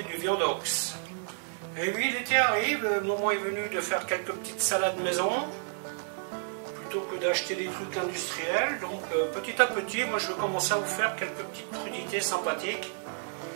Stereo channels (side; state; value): left; silent; digital silence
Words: du viandox. Et oui, l'été arrive, le moment est venu de faire quelques petites salades maison, plutôt que d'acheter des trucs industriels. Donc petit à petit, moi je vais commencer à vous faire quelques petites crudités sympathiques